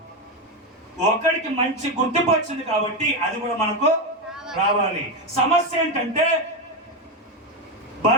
ఒకడికి మంచి గుర్తింపు వచ్చింది కాబట్టి అది కూడా మనకు రావాలి. సమస్య ఏంటంటే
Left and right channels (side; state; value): both; normal; correlation 0.11